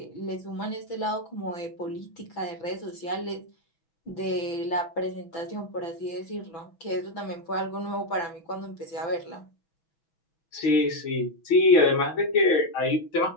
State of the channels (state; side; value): late; right; 6.1 ms